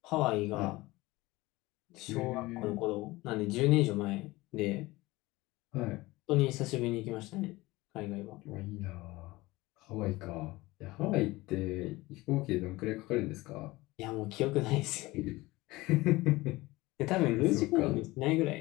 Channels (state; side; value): quieter; right; 20.2 dB